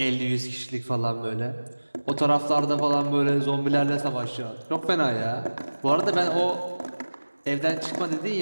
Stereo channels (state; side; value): inverted; both; correlation -1.00